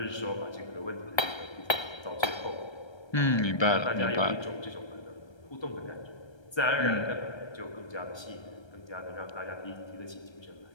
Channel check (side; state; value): right; late; 1.3 ms